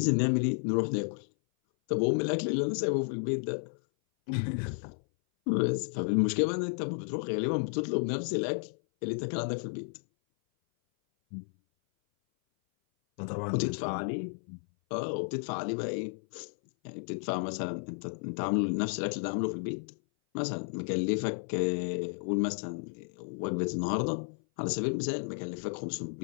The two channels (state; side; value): silent; right; 56 dB below the other